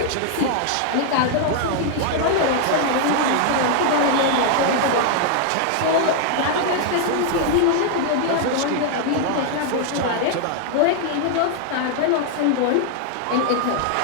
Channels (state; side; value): different; both; correlation 0.00